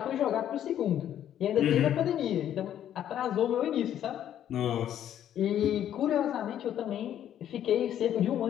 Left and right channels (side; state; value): right; quieter; 10.7 dB